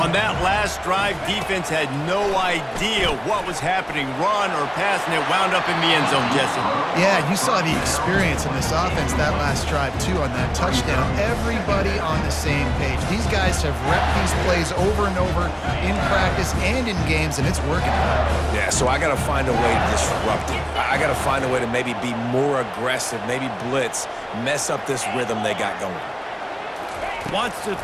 that last drive, defense had no idea what was happening, run or pass, and it wound up in the end zone, Jesse. Yeah, you saw the experience in this offense that last drive, too, on that touchdown. Everybody on the same page. These guys have repped these plays over and over in practice and in games, and it's working. Yeah, so I got to find a way to disrupt it. I got to find a way to maybe be more aggressive, maybe blitz, mess up this rhythm they got going. Wants to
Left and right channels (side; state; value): both; identical; correlation 1.00